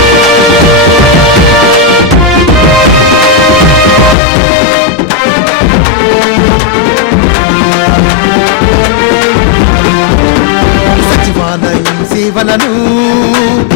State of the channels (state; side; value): drops out; right; at 4.2 s